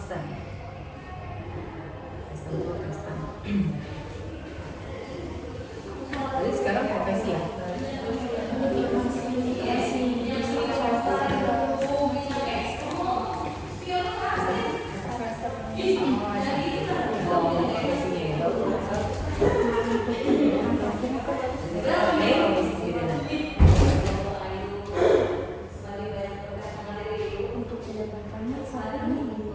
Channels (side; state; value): both; identical; correlation 1.00